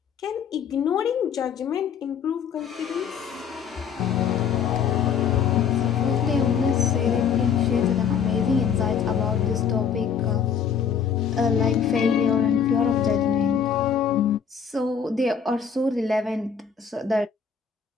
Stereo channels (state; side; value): quieter; right; 7.1 dB